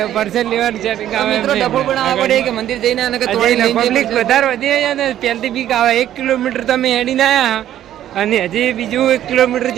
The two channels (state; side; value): quieter; left; 11.8 dB